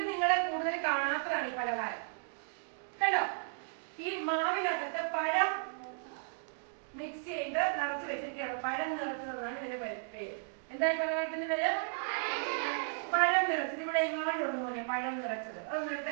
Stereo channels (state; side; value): silent; left; digital silence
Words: നിങ്ങളെ കൂടുതൽ കാണാത്തതാണ് ഈ പലഹാരം. കണ്ടോ? ഈ മാവിനകത്ത് പഴം മിക്സ് ചെയ്ത് നിറച്ച് വെച്ചിരിക്കുകയാണ്. പഴം നിറച്ചതെന്നാണ് ഇതിന്റെ പേര്. എന്താ ഈ പലഹാരത്തിന്റെ പേര്? പഴം നിറച്ചത്. ഇവിടെ എങ്ങാണ്ടുണ്ട് പോലെ പഴം നിറച്ചത്. അതൊന്നും എടുത്ത്